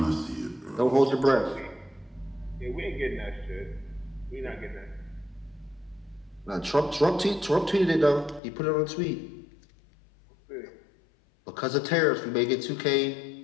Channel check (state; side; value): drops out; right; at 8.4 s